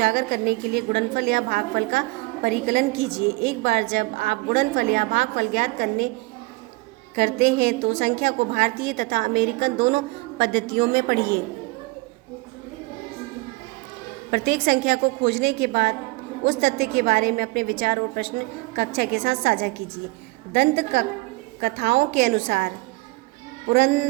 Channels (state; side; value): quieter; left; 23.6 dB